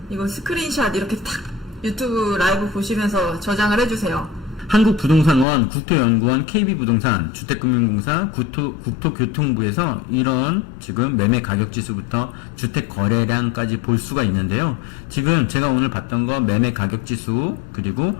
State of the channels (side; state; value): right; drops out; at 5.5 s